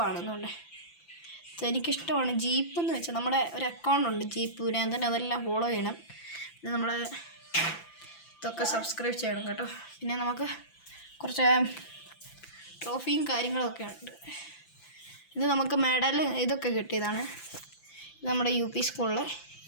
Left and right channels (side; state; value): right; late; 5.9 ms